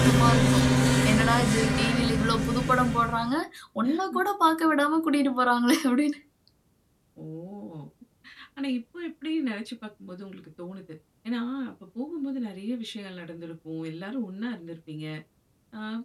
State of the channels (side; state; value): both; identical; correlation 1.00